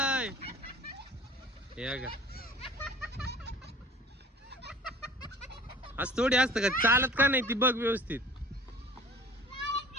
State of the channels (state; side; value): normal; both; correlation 0.46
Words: हे बघा असं थोडी असतं का? चालत का नाही ती बघ व्यवस्थित.